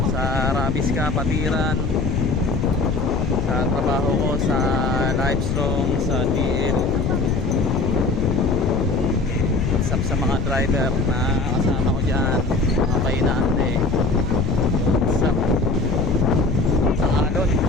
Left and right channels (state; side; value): noise; left; rumble, 2 dB below the sound